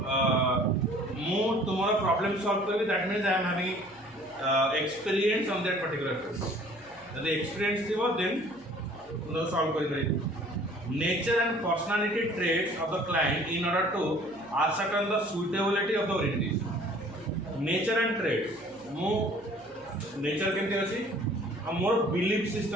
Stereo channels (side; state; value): right; noise; hum, 29 dB below the sound